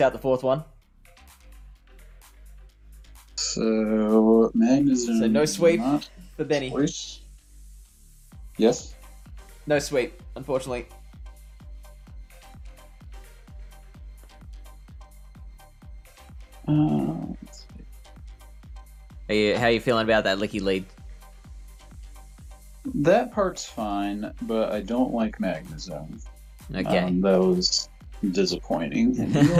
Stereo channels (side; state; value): both; identical; correlation 1.00